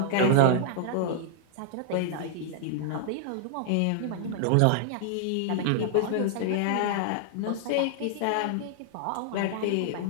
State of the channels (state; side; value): different; both; correlation -0.01